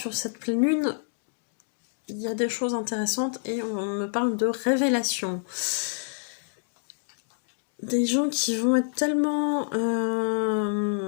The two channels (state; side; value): silent; right; digital silence